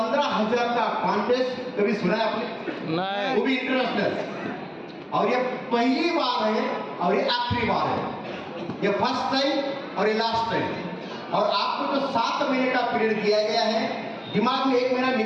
का कॉन्टेस्ट कभी सुना है आपने? नहीं वो भी इंटरनेशनल, और ये पहली बार है और ये आखिरी बार है। ये फर्स्ट टाइम और ये लास्ट टाइम। और आपको जो 7 महीने का पीरियड दिया गया है, दिमाग में 1 महीना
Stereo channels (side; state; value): both; identical; correlation 1.00